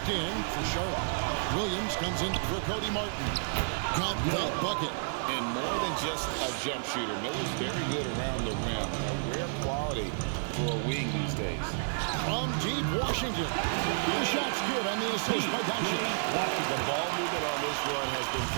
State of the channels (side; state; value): left; silent; digital silence